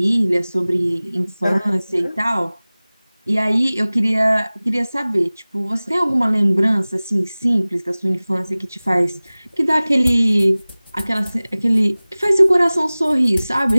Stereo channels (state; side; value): inverted; both; correlation -0.99